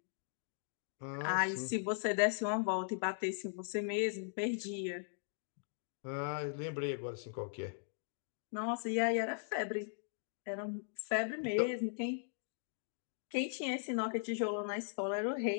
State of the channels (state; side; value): silent; right; digital silence